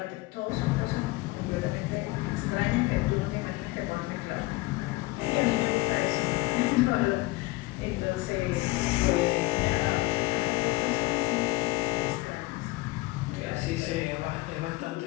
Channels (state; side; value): quieter; right; 21.0 dB